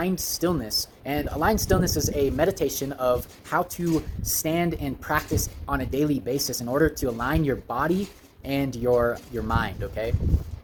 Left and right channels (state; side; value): identical; both; correlation 1.00